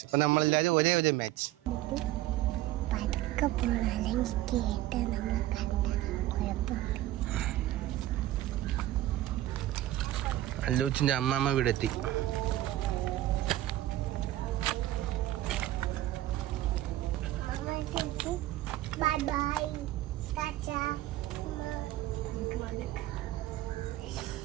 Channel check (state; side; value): quieter; left; 15.0 dB